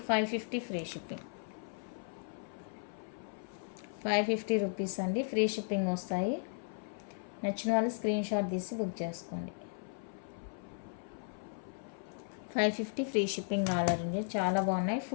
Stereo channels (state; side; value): silent; right; 54 dB below the other